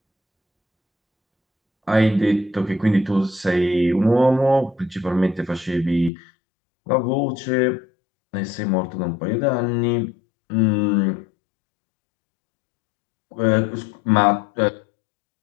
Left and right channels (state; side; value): drops out; right; at 6.1 s